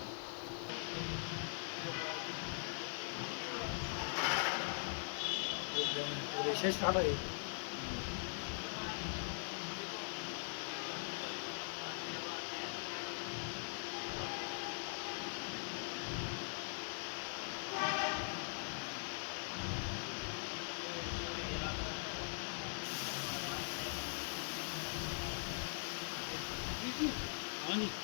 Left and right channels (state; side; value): silent; right; digital silence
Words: रेशेस काढा रे हाँ जी